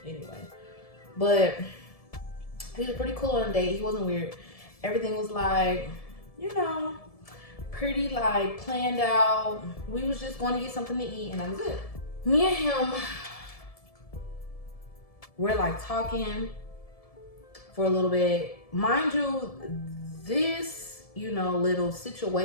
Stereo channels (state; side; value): late; right; 1.7 ms